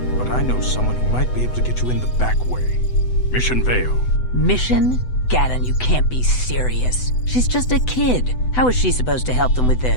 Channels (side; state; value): right; late; 8.0 ms